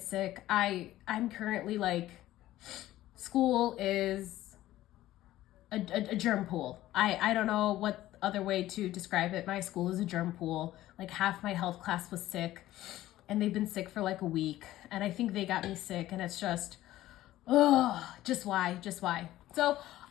sick. I'm currently like, school is a germ pool. I don't know what other way to describe it. My school is a germ pool. Like half my health class was sick and they've been sick for like a week. And I think they got me sick and it's just, just why? So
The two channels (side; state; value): right; quieter; 14.9 dB